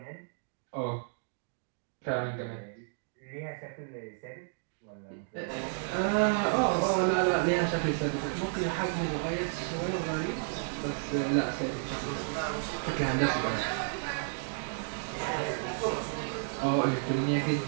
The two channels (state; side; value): silent; left; digital silence